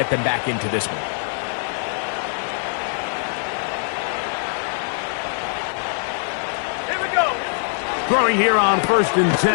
them back into this one. Here we go. Throwing here on 1st and 10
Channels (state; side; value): silent; right; 64 dB below the other